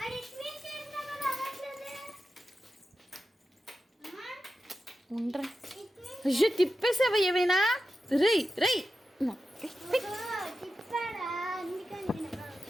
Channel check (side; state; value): both; normal; correlation 0.92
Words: ఉండరా అయ్యో తిప్పేసావా ఏమైనా? రై రై